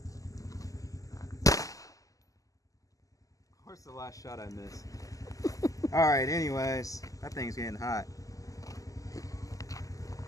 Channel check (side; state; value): right; late; 0.17 ms